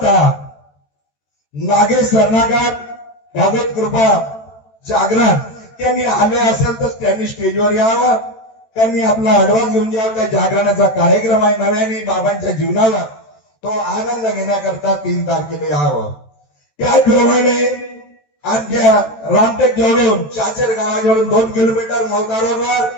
नागेश सरनाकार भगवत कृपा जागरण त्यांनी आले असेल तर त्यांनी स्टेजवर यावं, त्यांनी आपला अडवास घेऊन जावं। त्या जागरणाचा कार्यक्रम आहे नव्याने बाबांच्या जीवनाला, तो आनंद घेण्याकरता 3 तारखेला यावं। त्याचप्रमाणे आमच्या रामटेक जवळून चाचेर गावाजवळून 2 किलोमीटर मौदा रोडवर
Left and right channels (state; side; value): late; right; 14 ms